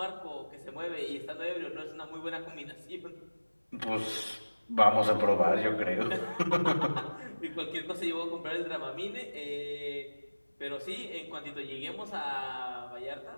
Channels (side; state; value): both; inverted; correlation -1.00